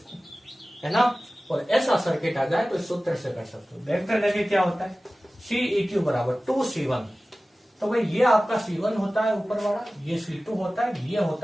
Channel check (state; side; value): normal; both; correlation 0.97